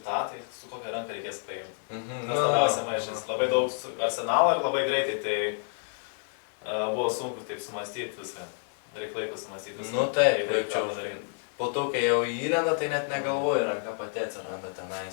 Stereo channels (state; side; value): silent; right; 58 dB below the other